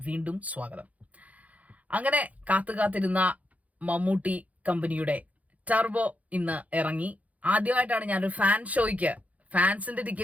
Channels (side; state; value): left; late; 0.071 ms